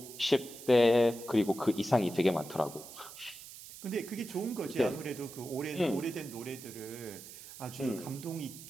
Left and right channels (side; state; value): right; noise; hiss, 15 dB below the sound